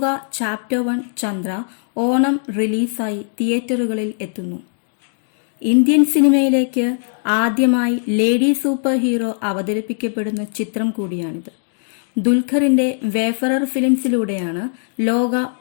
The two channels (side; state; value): right; silent; digital silence